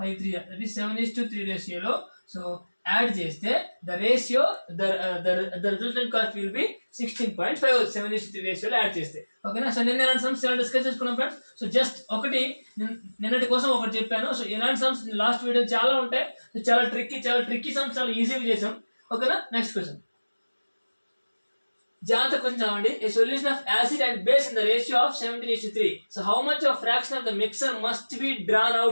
5 3 ja. That is 7 is to 3 ratio lo. So add cheste the ratio the resultant cost will be 16.5. 7 is to 3 ratio lo add cheste. Okay na. So నిన్న ఎలాంటి sums చాలా discuss చేసుకున్నాం friends. So just ఒకటి నిన్నటి కోసం ఒకటి చెప్పాను. So ఇలాంటి సమ్స్ లాస్ట్ వీడియో చాలా ఉంటాయి. సో చాలా ట్రిక్కీ సమ్స్ చాలా ఈజీగా చేసాం. ఓకేనా. నెక్స్ట్ క్వశ్చన్ జాగ్రత్త కొంచెం చదవండి. A solution of acid and base in the ratio of 17:3. So how much of fraction of the mixture must be drawn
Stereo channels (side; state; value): both; inverted; correlation -1.00